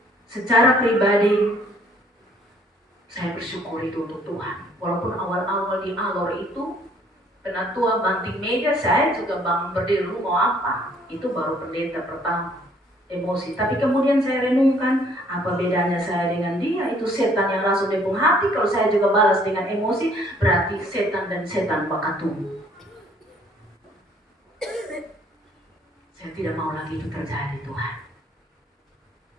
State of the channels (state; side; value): normal; both; correlation 0.61